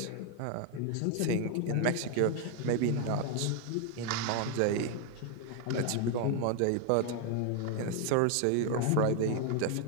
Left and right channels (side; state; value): both; different; correlation 0.00